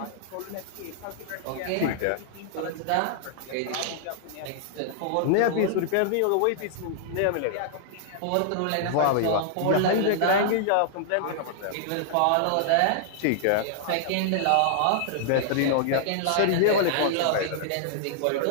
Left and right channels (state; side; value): different; both; correlation -0.01